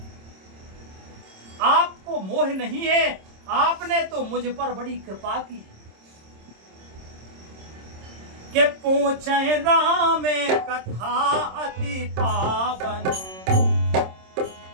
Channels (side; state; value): left; late; 26 ms